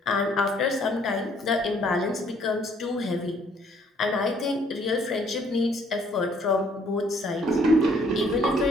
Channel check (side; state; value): both; normal; correlation 0.63